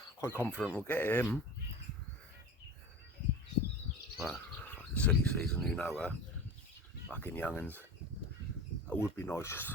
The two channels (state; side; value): normal; both; correlation 0.33